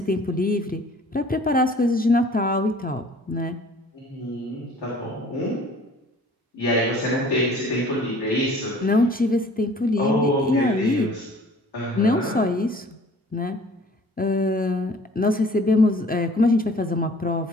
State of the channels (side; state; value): both; normal; correlation 0.51